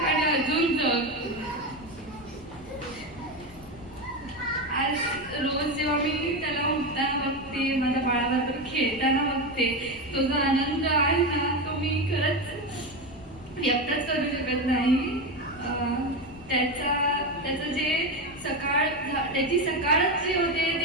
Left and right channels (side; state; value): left; noise; rumble, 20 dB below the sound